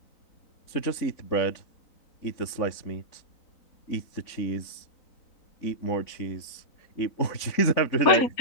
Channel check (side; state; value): right; late; 3.9 ms